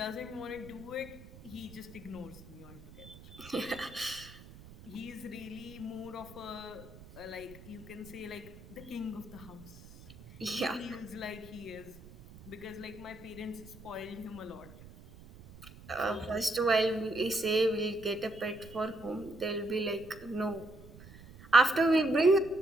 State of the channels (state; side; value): noise; right; rumble, 18 dB below the sound